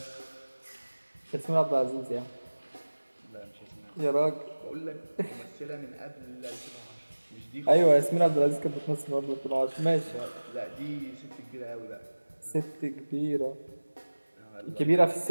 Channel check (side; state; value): both; inverted; correlation -1.00